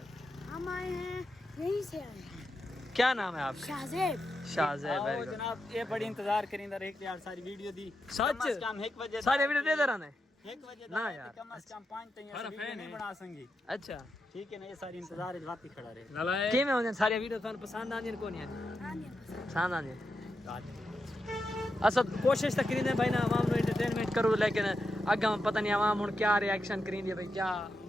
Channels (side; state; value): both; normal; correlation 0.87